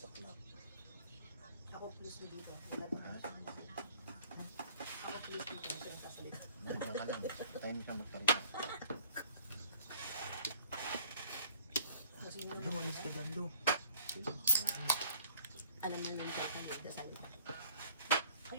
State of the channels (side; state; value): both; inverted; correlation -0.55